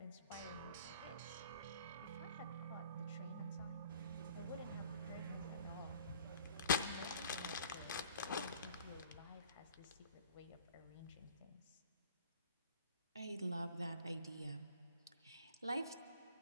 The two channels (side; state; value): both; inverted; correlation -0.51